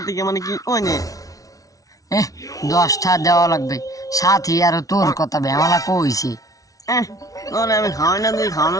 মানে কি কই নে 10টা দেওয়া লাগবে সাথী আর তোর কথা বেমালা কইছে তোরে আমি খাওয়াই না তুই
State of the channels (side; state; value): right; late; 0.17 ms